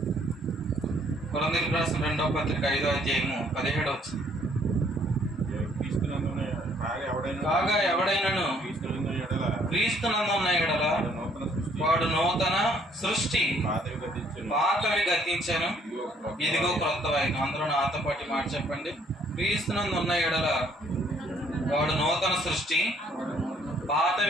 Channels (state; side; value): normal; both; correlation 0.64